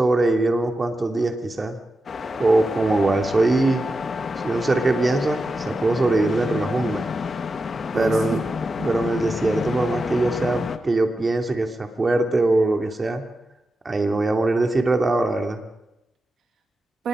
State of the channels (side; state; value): both; normal; correlation 0.90